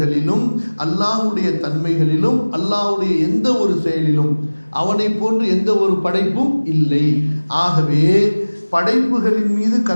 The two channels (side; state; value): both; inverted; correlation -1.00